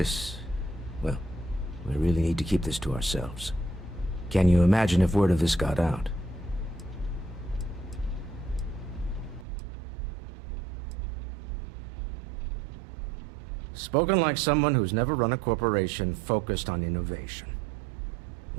well, we really need to keep this to ourselves. Can you imagine if word of this got out? Spoken like someone who's never run a corporation focused on innovation.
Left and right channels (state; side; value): drops out; left; at 9.5 s